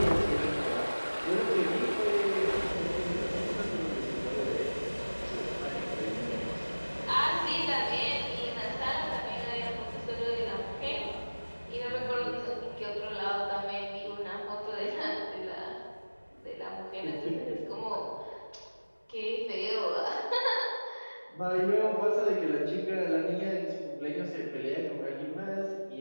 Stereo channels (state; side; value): inverted; both; correlation -1.00